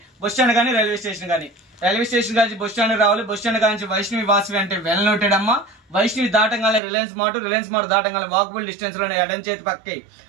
బస్ స్టాండ్ కానీ రైల్వే స్టేషన్ కానీ. రైల్వే స్టేషన్ కానీ బస్ స్టాండ్ రావాలి. బస్ స్టాండ్ కానీ వైష్ణవి వాసవి అంటే వెల్ నోటెడ్ అమ్మా. వైష్ణవి దాటంగానే రిలయన్స్ మార్ట్ దాటంగానే వాకబుల్ డిస్టెన్స్ లోనే ఎడం చేతి పక్కి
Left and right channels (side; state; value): left; drops out; at 6.8 s